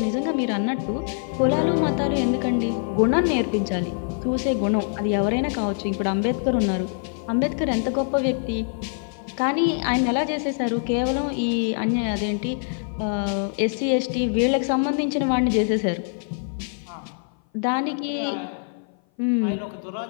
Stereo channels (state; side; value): silent; right; 57 dB below the other